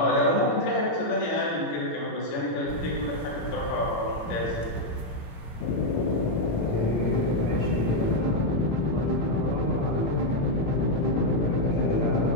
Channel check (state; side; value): late; right; 17 ms